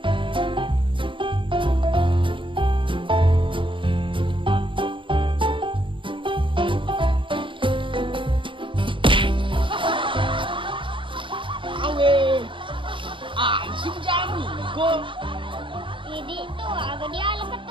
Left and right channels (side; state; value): left; late; 0.24 ms